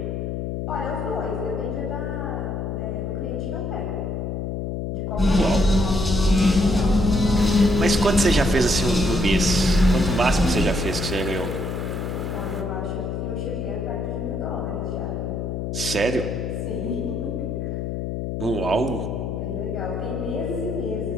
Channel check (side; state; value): left; noise; hum, 3 dB below the sound